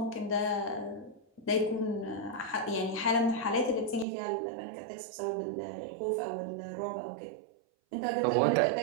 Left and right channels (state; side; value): drops out; left; at 4.0 s